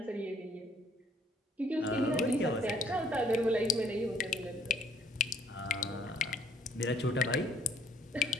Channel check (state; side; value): normal; both; correlation 0.64